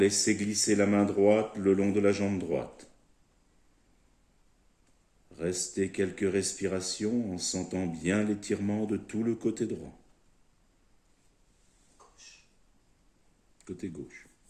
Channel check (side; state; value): both; identical; correlation 1.00